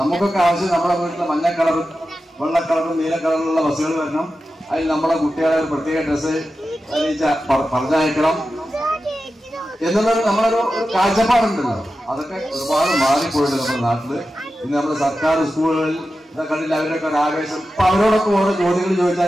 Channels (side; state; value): both; normal; correlation 0.92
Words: ആവശ്യം നമ്മുടെ വീട്ടിൽ മഞ്ഞ കളറും വെള്ള കളറും നീല കളറിലുള്ള ബസ്സുകൾ വരണം. അതിൽ നമ്മുടെ കുട്ടികളെ ഒരു പ്രത്യേക ഡ്രസ്സ് പറഞ്ഞയക്കണം എന്നുള്ളത് നമ്മളൊരു കാഴ്ചപ്പാടുണ്ടല്ലോ. അതൊക്കെ ഒരുപാട് മാറിപ്പോയിട്ടുണ്ട് നമ്മുടെ നാട്ടില്. ഇന്ന് നമ്മുടെ സർക്കാർ സ്കൂളുകളിൽ കണ്ടില്ല അവരൊക്കെ ഒരു ആവേശം. അപ്പൊ അവരോടൊക്കെ ഓരോ ചോദ്യങ്ങൾ ചോദിച്ചാൽ